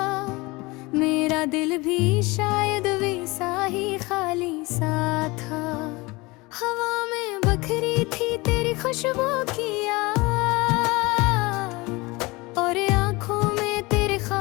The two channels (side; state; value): right; quieter; 23.7 dB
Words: मेरा दिल भी शायद वैसा ही खाली सा था। हवा में बखरी थी तेरी खुशबू की याद, और आँखों में तेरे